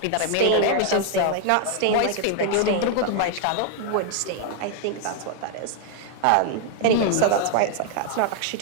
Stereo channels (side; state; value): both; different; correlation 0.00